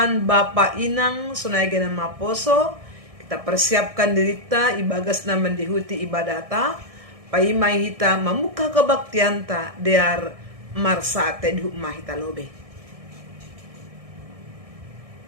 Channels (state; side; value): late; left; 1.6 ms